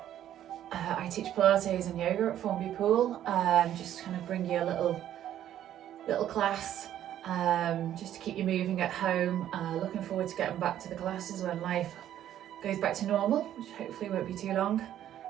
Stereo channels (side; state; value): left; quieter; 11.4 dB